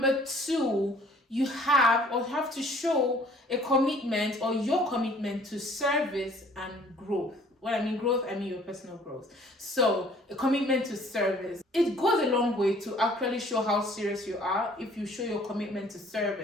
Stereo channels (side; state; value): both; normal; correlation 0.56